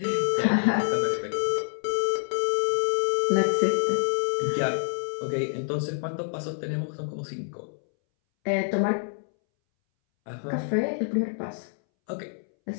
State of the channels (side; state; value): right; silent; 60 dB below the other